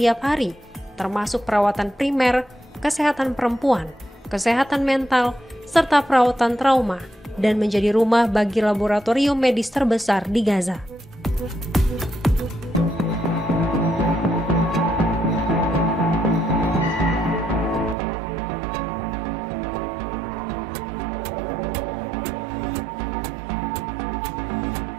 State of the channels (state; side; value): drops out; left; at 17.9 s